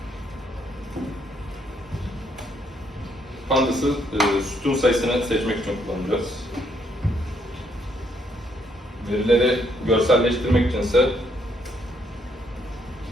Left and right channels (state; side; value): normal; both; correlation 0.72